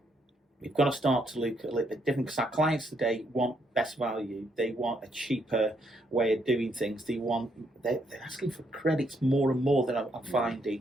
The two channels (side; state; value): both; normal; correlation 0.74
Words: we've got to start to look a little bit different, because our clients today want best value. They want a cheaper way of doing things. They're asking for credits more and more than I'm